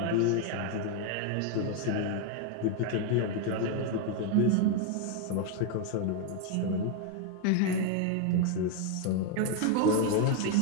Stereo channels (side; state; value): both; different; correlation 0.01